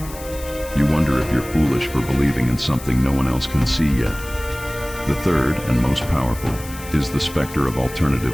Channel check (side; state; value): left; noise; hiss, 15 dB below the sound